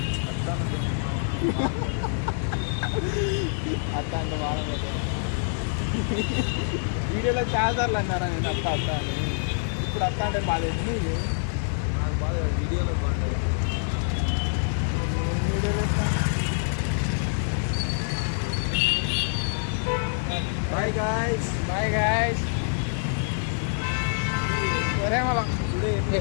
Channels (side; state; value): right; silent; digital silence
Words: అత్త అంటే బాగా వీడియోలో చాలాసార్లు అన్నారా నేను అత్త అత్త అని. ఇప్పుడు అత్త అంటే బాగా నీకు నాకు బాగా వీడియోలో బాగుంటుంది. వీడియోలో బాయ్ గాయ్స్. Bye guys. సరే మళ్ళా